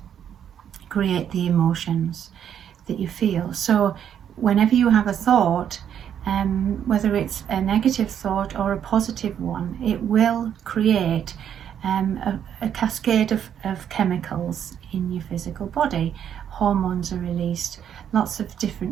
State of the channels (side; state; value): left; quieter; 9.1 dB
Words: create the emotions that you feel. So whenever you have a thought, whether it's a negative thought or a positive one, it will create a cascade of chemicals in your physical body. Hormones are released, lots of